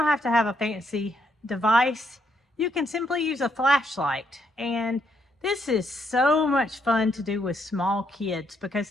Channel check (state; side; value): normal; both; correlation 0.74